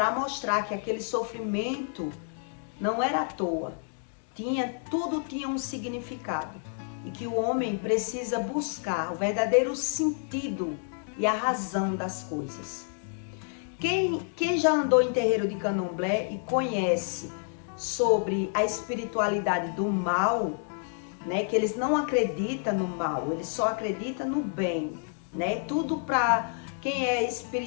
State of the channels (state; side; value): silent; right; 59 dB below the other